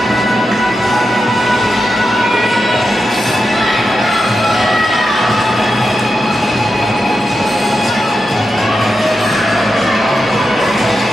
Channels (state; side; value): normal; both; correlation 0.88